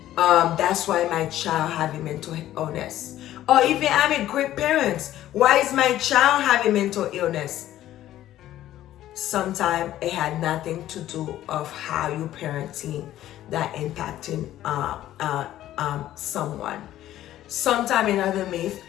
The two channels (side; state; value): right; quieter; 13.3 dB